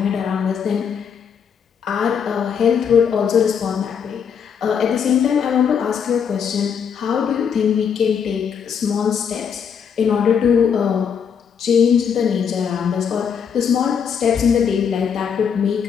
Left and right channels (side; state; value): right; quieter; 7.2 dB